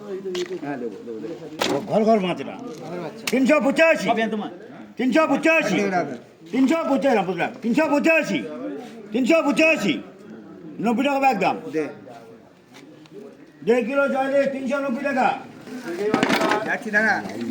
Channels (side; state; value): both; identical; correlation 1.00